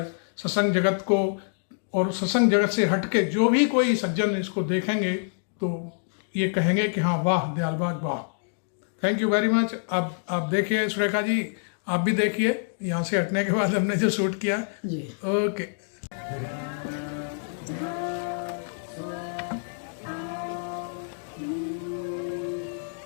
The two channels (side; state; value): right; silent; digital silence